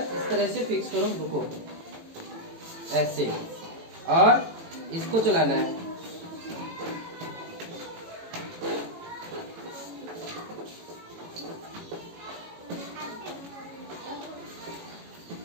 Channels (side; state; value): left; late; 18 ms